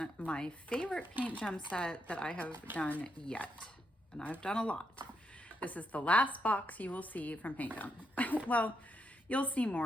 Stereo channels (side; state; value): both; normal; correlation 0.80